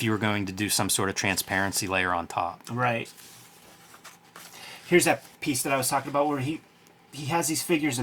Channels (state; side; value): identical; both; correlation 1.00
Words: you were going to do some sort of transparency layer on top. Right. Here's that piece that I was talking about where he has these figures